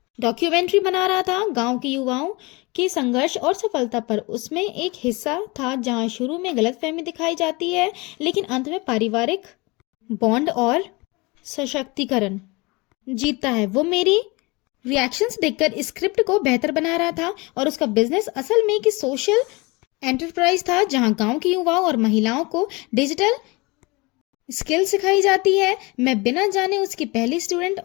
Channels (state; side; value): quieter; right; 25.4 dB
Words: डॉक्यूमेंट्री बना रहा था गांव के युवाओं के संघर्ष और सफलता पर। उसमें एक हिस्सा था जहां शुरू में गलतफहमी दिखाई जाती है लेकिन अंत में पारिवारिक बॉन्ड और सशक्तिकरण जीतता है। वो मेरी रिएक्शंस देखकर स्क्रिप्ट को बेहतर बना रहा था और उसका बिजनेस असल में एक सोशल एंटरप्राइज था जहां गांव के युवाओं और महिलाओं को डिजिटल स्किल सिखाई जाती है। मैं बिना जाने उसकी पहली स्टूडेंट